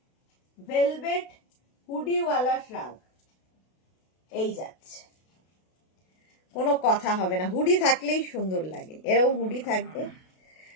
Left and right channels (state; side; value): late; right; 32 ms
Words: ভেলভেট হুডিওয়ালা শ্রাগ, এই যাচ্ছে, কোনো কথা হবে না, হুডি থাকলেই সুন্দর লাগে, এরকম হুডি থাকবে।